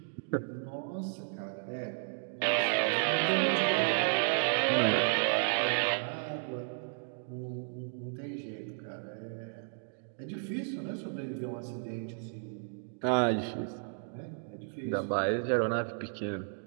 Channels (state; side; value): silent; left; digital silence